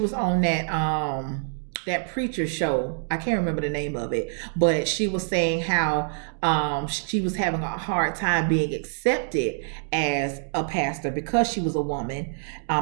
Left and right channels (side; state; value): left; silent; 61 dB below the other